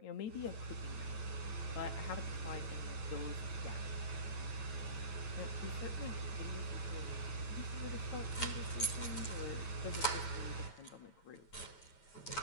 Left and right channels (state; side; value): late; right; 9.2 ms